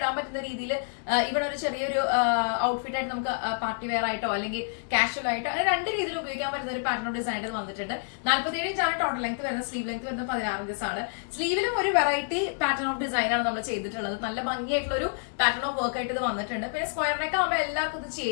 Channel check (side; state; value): right; silent; digital silence